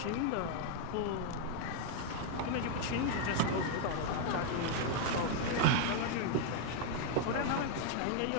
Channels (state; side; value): different; both; correlation 0.00